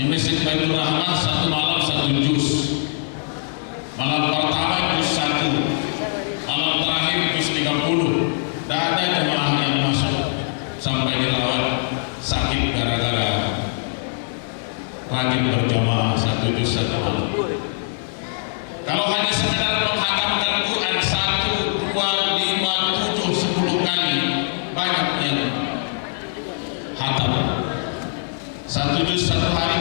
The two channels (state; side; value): silent; right; digital silence